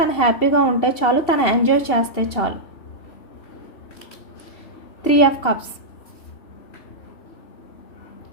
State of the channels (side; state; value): right; late; 2.7 ms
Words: హ్యాపీగా ఉంటే చాలు, తను ఎంజాయ్ చేస్తే చాలు. 3 of కప్స్,